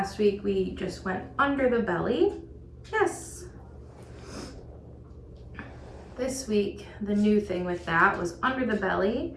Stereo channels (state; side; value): identical; both; correlation 1.00